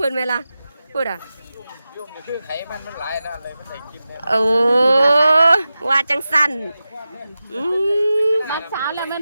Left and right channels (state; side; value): inverted; both; correlation -0.93